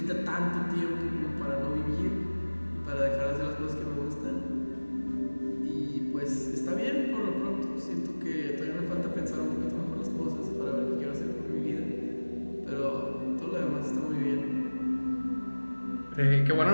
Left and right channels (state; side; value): inverted; both; correlation -1.00